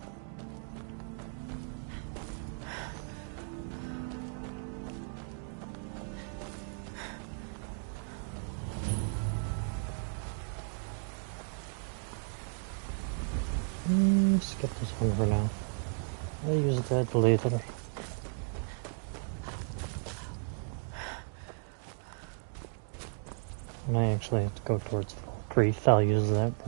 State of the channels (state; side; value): silent; left; 55 dB below the other